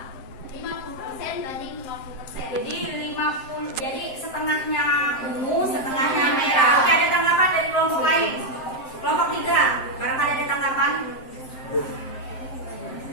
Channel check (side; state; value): right; late; 7.7 ms